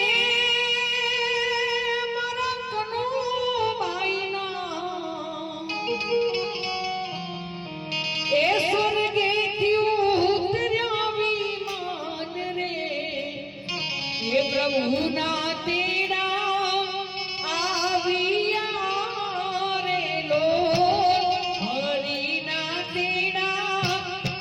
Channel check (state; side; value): identical; both; correlation 1.00